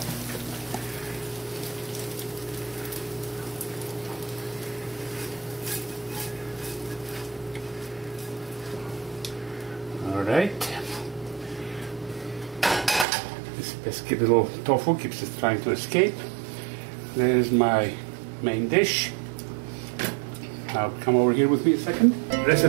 All right. This pesky little tofu keeps it trying to escape. There's my main dish. Now come over here with me a second. Dress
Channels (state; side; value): drops out; left; at 13.1 s